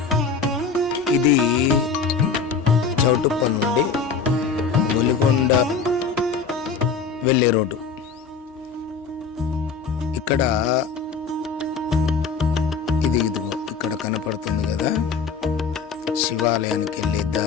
ఇది చౌటుప్ప నుండి ఒలిగొండ వెళ్ళే రోడ్డు. ఇక్కడ ఇదిగో ఇక్కడ కనపడుతుంది కదా శివాలయానికి వెళ్ళే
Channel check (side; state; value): right; quieter; 5.4 dB